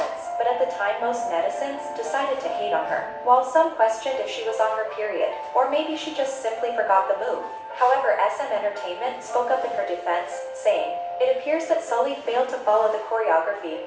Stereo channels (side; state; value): both; identical; correlation 1.00